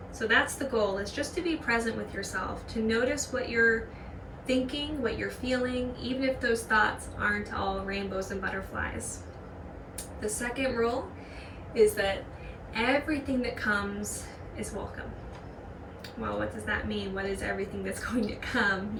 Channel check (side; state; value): both; identical; correlation 1.00